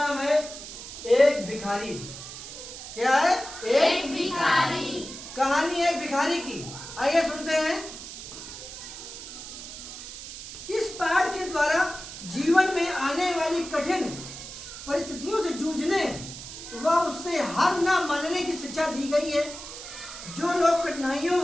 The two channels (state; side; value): noise; right; hiss, 11 dB below the sound